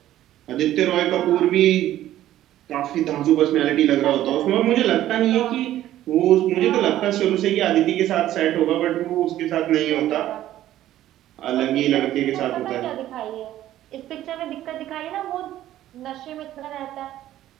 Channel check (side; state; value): left; quieter; 13.3 dB